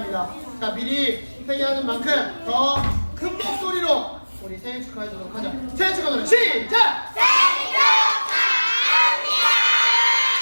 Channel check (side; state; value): both; inverted; correlation -1.00